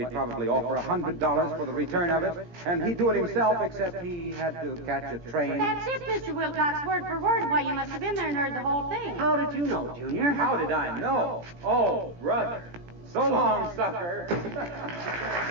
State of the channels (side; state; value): left; late; 17 ms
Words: probably offer $100 for the return of it, and he'd do it himself except he had to catch a train? That's it, Mr. Wilcox, word for word. Why, you must have been there and heard the whole thing. How did you know, Junior? How did I know? Oh, brother. So long, sucker.